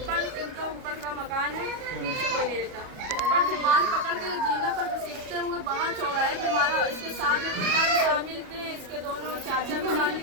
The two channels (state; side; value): late; left; 37 ms